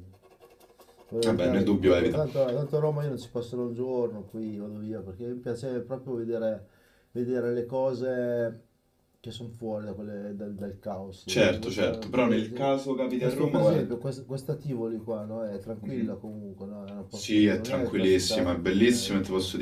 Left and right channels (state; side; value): identical; both; correlation 1.00